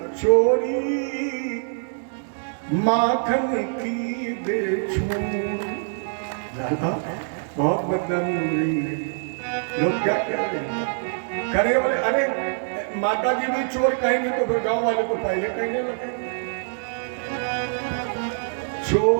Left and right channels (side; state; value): left; silent; digital silence